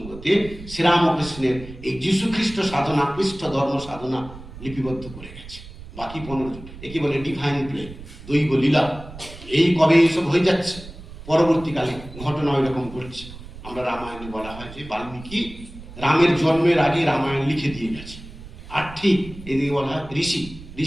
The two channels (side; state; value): right; noise; rumble, 15 dB below the sound